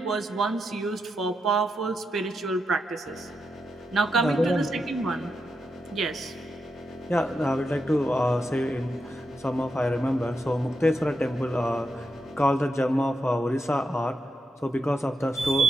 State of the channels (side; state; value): both; normal; correlation 0.85